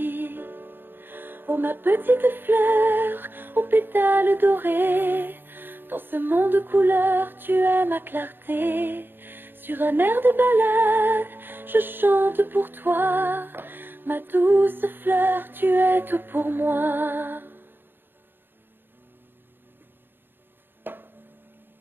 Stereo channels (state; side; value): late; left; 0.099 ms